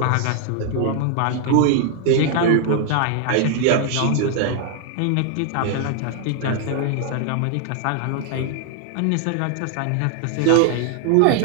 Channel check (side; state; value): both; different; correlation 0.00